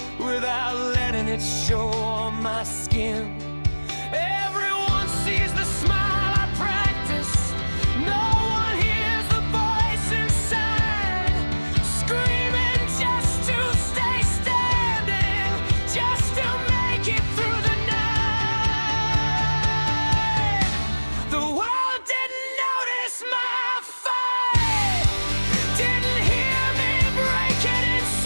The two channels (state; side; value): inverted; both; correlation -1.00